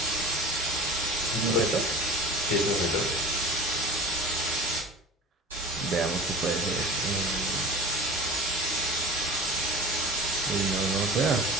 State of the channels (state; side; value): normal; both; correlation 0.37